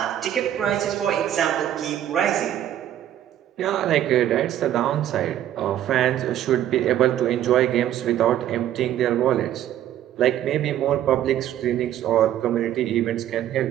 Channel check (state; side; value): quieter; left; 11.6 dB